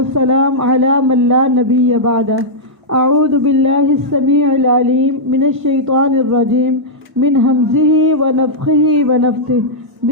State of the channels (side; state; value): both; normal; correlation -0.10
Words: على من لا نبي بعده. أعوذ بالله السميع العليم من الشيطان الرجيم من همزه ونفخه ونفثه.